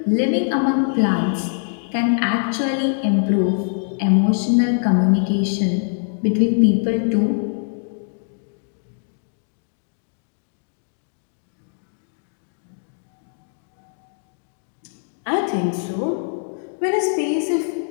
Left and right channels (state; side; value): silent; right; digital silence